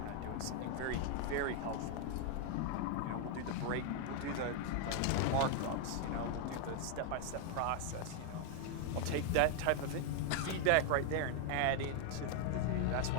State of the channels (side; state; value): both; different; correlation 0.00